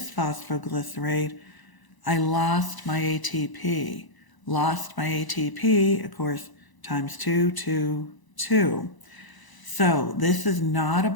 I lost my ATP. Lost my ATP, of course, times 2, 2, 2. So this is not a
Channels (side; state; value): right; late; 1.0 ms